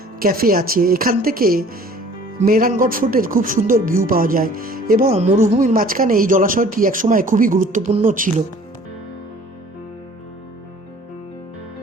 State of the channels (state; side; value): normal; both; correlation 0.51